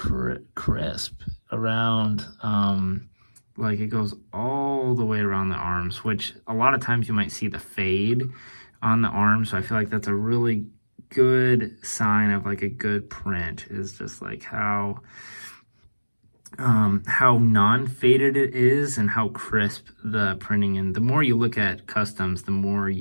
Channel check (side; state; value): both; inverted; correlation -1.00